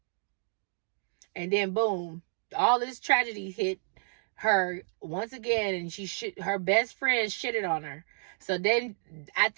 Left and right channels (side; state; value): left; silent; digital silence